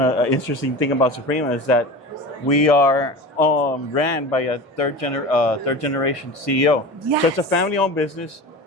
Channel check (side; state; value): both; normal; correlation 0.31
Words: is that we are ran by a third generation CEO. Yes. So it's a family-owned business.